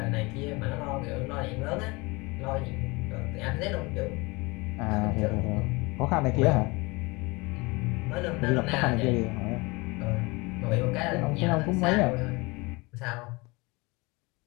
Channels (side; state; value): right; quieter; 25.2 dB